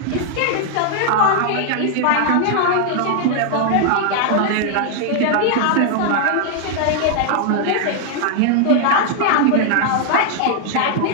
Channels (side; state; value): both; different; correlation 0.00